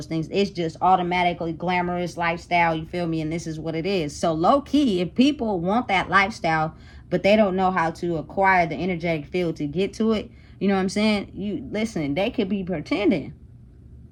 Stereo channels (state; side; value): identical; both; correlation 1.00